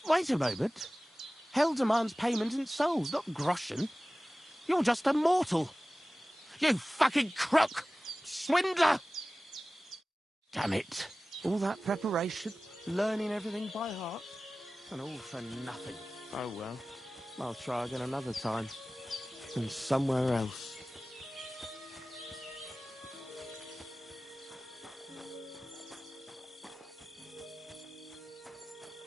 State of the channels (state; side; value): normal; both; correlation 0.97